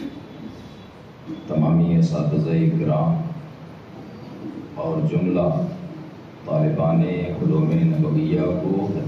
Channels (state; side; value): identical; both; correlation 1.00